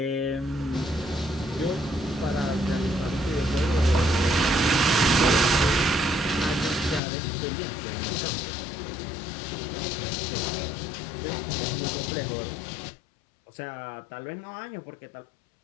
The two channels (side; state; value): right; drops out; at 7.0 s